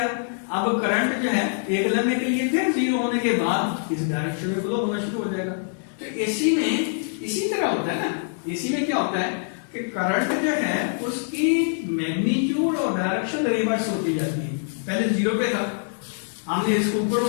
अब करंट जो है एक लम्हे के लिए फिर 0 होने के बाद इस डायरेक्शन में फ्लो होना शुरू हो जाएगा। तो एसी में इसी तरह होता है ना, एसी में क्या होता है कि करंट जो है उसकी मैग्नीट्यूड और डायरेक्शन रिवर्स होती जाती है। पहले 0 पे था, हमने इसको ऊपर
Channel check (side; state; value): right; silent; digital silence